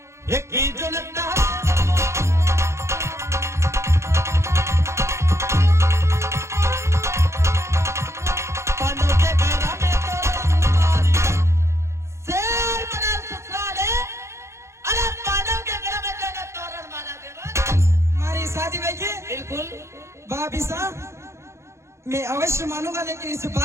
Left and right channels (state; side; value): late; left; 0.13 ms